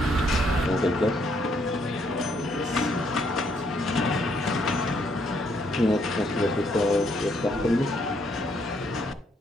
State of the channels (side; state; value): both; normal; correlation 0.71